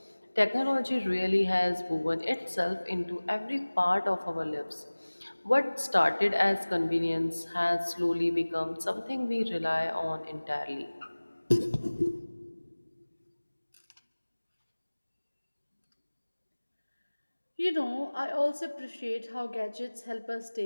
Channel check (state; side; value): inverted; both; correlation -1.00